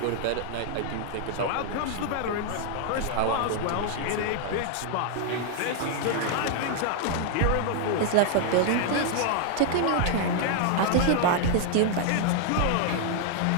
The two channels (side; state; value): both; different; correlation 0.00